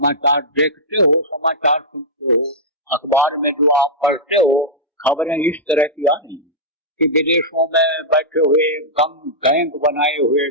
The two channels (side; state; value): both; normal; correlation -0.11